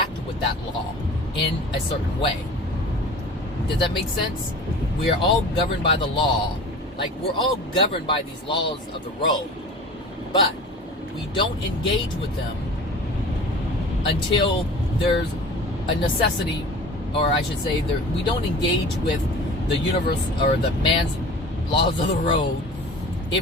with that law in a certain way. Does that make sense? We are all governed by the law. Like, we're all governed by these laws of the road. But we don't engage with them until there's a necessity, or I should say, we don't engage with the universe or the man's laws of the road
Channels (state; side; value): normal; both; correlation 0.39